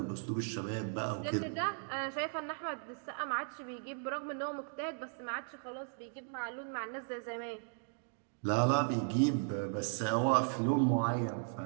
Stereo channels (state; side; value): silent; left; 53 dB below the other